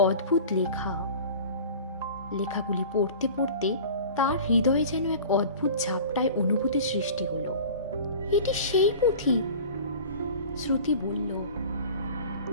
অদ্ভুত লেখা। লেখাগুলি পড়তে পড়তে তার হৃদয়ে যেন এক অদ্ভুত ঝাপটায় অনুভূতি সৃষ্টি হলো। এটি সেই পুঁথি, শ্রুতি বলল,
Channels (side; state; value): both; inverted; correlation -0.40